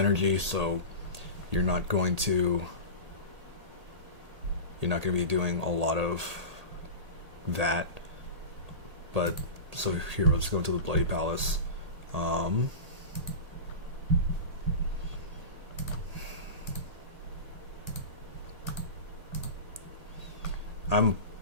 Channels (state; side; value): late; left; 1.8 ms